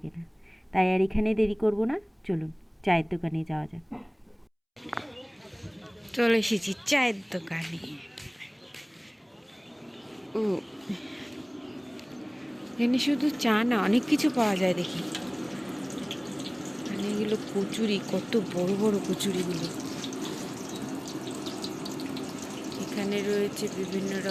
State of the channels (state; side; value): identical; both; correlation 1.00